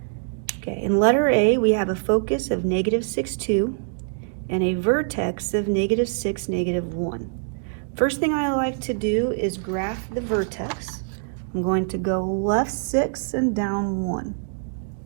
Okay, in letter A, we have a focus of -6, 2 and a vertex of -6, -1. First thing I like to do is graph the vertex. I'm going to go left 6 and down 1.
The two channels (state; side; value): silent; left; digital silence